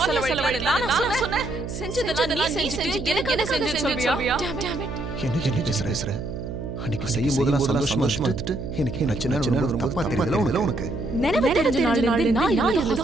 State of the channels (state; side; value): noise; right; hum, 7 dB below the sound